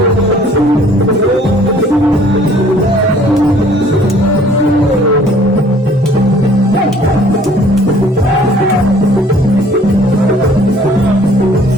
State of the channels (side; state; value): both; normal; correlation 0.56